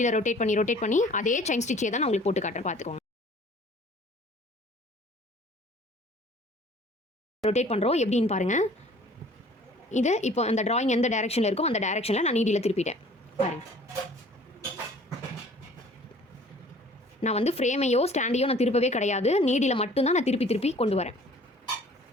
ரொட்டேட் பண்ணி அதே செயின் ஸ்டிச்சே தான் நான் உங்களுக்கு போட்டு காட்டுறேன், பார்த்துக்கோங்க. ரொட்டேட் பண்ணுறோம் எப்படின்னு பாருங்கள். இது இப்போ அந்த டிராயிங் எந்த டைரக்ஷனில் இருக்கோ அந்த டைரக்ஷனில் நான் நீடியில் திருப்பிட்டேன். பாருங்கள், நான் வந்து ஃப்ரேமையோ ஸ்டாண்டையோ நான் திருப்பவே கிடையாது. நீடியில் மட்டும்தான் நான் திருப்பி கொண்டு வரேன்.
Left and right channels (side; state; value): both; normal; correlation 0.51